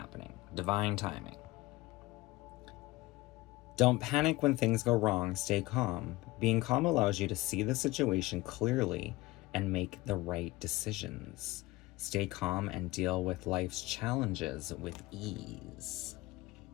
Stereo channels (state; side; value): quieter; right; 20.1 dB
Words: Divine timing. Don't panic when things go wrong. Stay calm. Being calm allows you to see the situation clearly and make the right decisions. Stay calm and deal with life's challenges with ease.